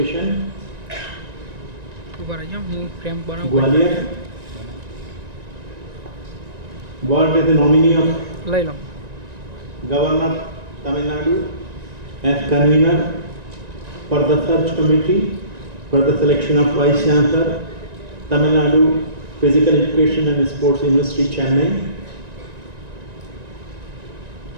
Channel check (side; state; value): left; late; 1.9 ms